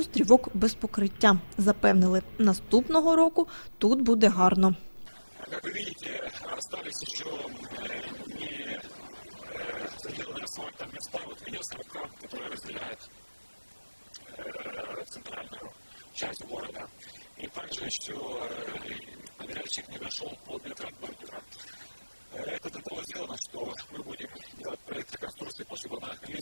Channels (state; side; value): inverted; both; correlation -1.00